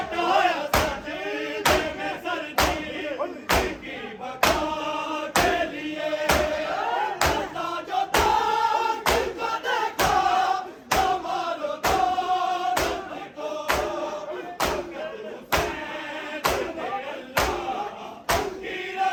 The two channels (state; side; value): identical; both; correlation 1.00